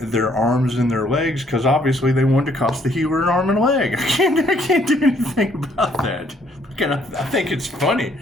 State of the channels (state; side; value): normal; both; correlation 0.66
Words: their arms and their legs because obviously they wanted to cost the healer an arm and a leg. I can't do anything about that. I think it's funny,